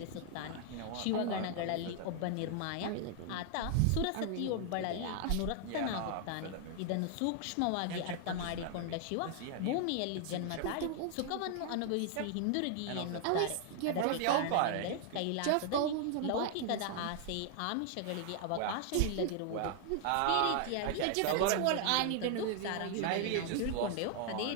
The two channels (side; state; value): both; different; correlation 0.00